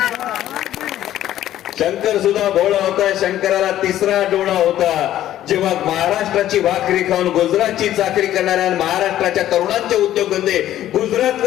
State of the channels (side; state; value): right; quieter; 12.6 dB